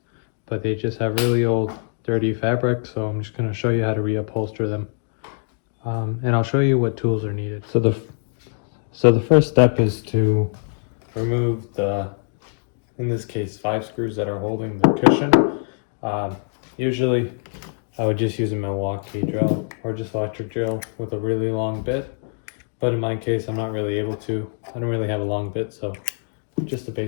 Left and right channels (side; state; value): right; silent; digital silence